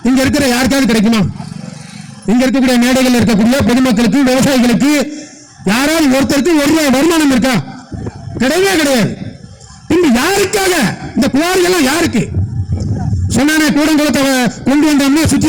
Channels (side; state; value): both; identical; correlation 1.00